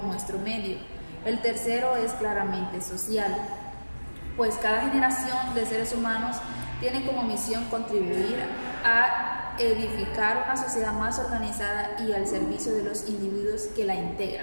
nuestro medio. El tercero es claramente social, pues cada generación de seres humanos tiene como misión contribuir a edificar una sociedad más organizada y al servicio de los individuos que la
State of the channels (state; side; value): inverted; both; correlation -1.00